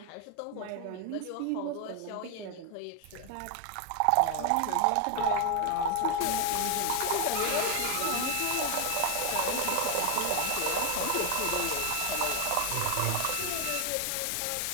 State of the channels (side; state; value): both; different; correlation 0.01